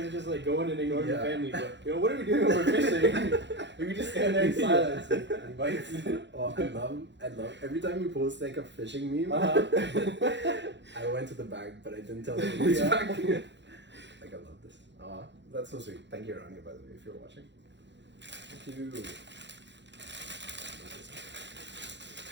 are just like going and ignoring the family. But what are we doing when we're fishing? We just stand there in silence. And bites. Oh, I love. Every time you post like a fishing meme, I went to the bag, but I didn't tell them which bag. Like, I love this. That's so sweet. Thank you, Rania, by the way, if you're watching. Thank you.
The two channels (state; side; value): late; left; 0.52 ms